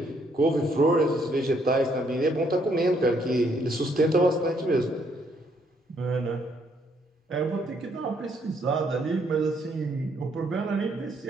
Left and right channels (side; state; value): both; normal; correlation 0.70